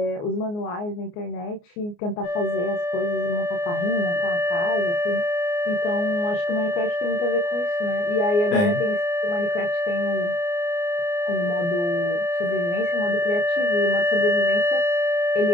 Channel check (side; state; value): right; late; 29 ms